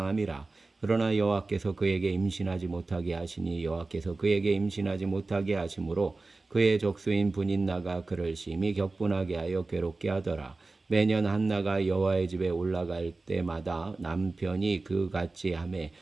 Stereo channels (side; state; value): left; quieter; 3.5 dB